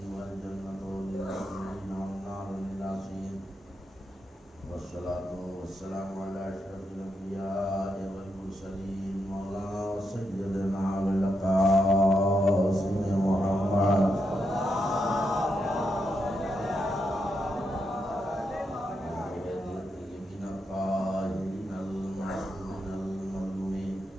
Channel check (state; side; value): normal; both; correlation 0.83